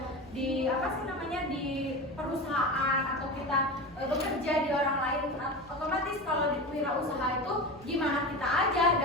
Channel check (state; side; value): normal; both; correlation 0.26